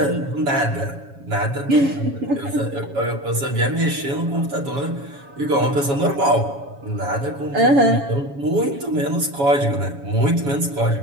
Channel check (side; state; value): left; late; 7.2 ms